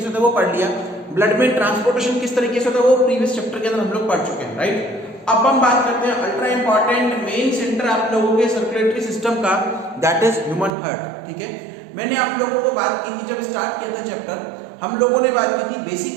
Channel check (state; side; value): drops out; left; at 10.7 s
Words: से होता है वो पढ़ लिया, ब्लड में ट्रांसपोर्टेशन किस तरीके से होता है वो प्रीवियस चैप्टर के अंदर हम लोग पढ़ चुके हैं, राइट। अब हम बात करते हैं अल्ट्रा इंपॉर्टेंट मेन सेंटर आप लोगों के सर्कुलेटरी सिस्टम का, दैट इज ह्यूमन हार्ट। ठीक है, मैंने आप लोगों को बात की थी जब स्टार्ट किया था चैप्टर, हम लोगों ने बात की थी